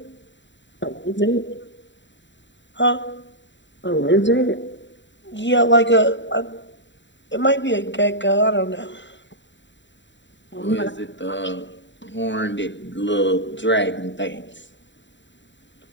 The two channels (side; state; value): right; late; 0.53 ms